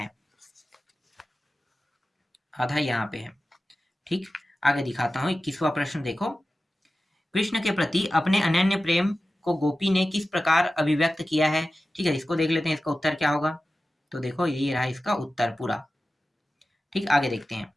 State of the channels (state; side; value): normal; both; correlation 0.94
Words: आधा यहाँ पे है, ठीक। आगे दिखाता हूँ 21वां प्रश्न देखो, कृष्ण के प्रति अपने अनन्य प्रेम को गोपी ने किस प्रकार अभिव्यक्त किया है, ठीक है, इसको देख लेते हैं, इसका उत्तर क्या होगा, तो देखो यही रहा इसका उत्तर पूरा, ठीक। आगे देखते हैं,